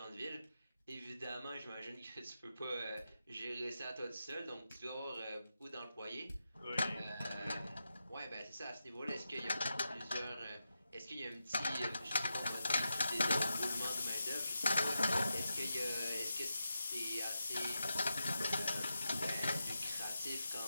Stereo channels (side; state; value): both; inverted; correlation -0.89